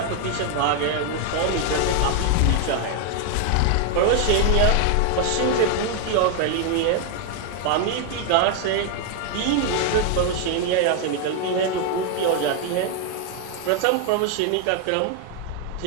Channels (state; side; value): different; both; correlation 0.00